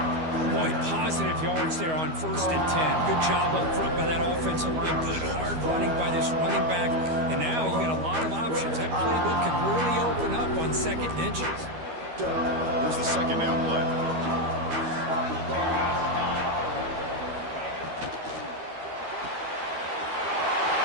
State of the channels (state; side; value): late; left; 13 ms